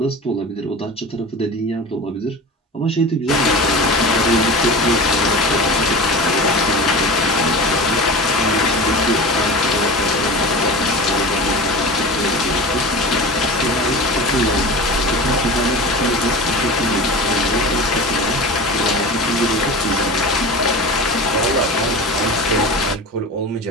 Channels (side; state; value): both; normal; correlation 0.32